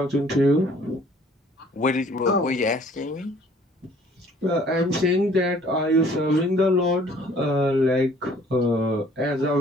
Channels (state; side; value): normal; both; correlation 0.56